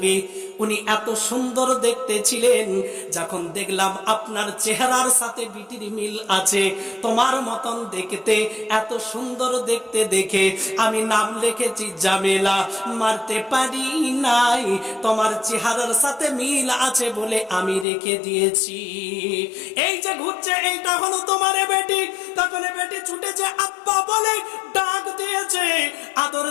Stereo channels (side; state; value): right; drops out; at 17.9 s